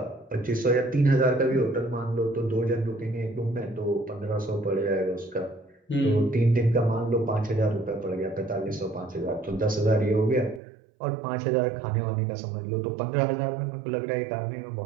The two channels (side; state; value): left; drops out; at 10.6 s